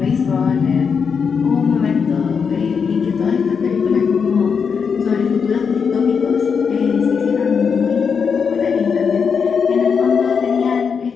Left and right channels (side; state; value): right; quieter; 6.1 dB